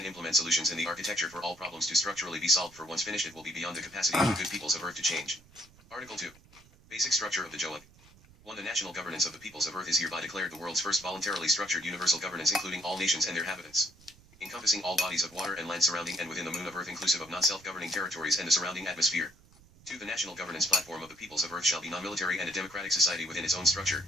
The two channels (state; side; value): noise; right; rumble, 26 dB below the sound